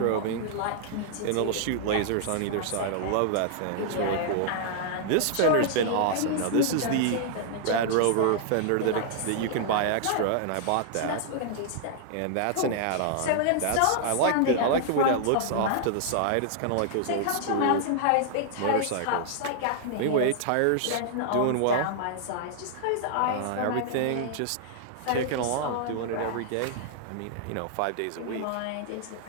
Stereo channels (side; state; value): both; different; correlation -0.01